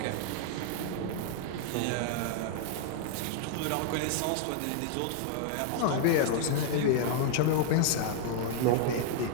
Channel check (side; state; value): both; different; correlation -0.01